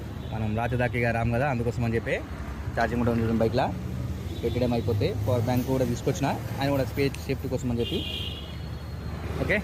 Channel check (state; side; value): identical; both; correlation 1.00